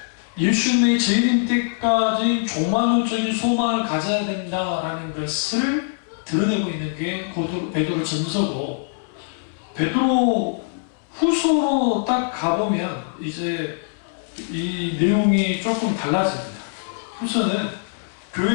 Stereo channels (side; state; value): right; silent; 64 dB below the other